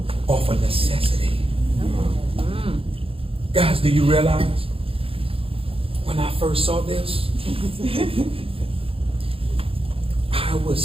Off of necessity. Guys, do you realize when I first saw this, I was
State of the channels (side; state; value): left; late; 0.27 ms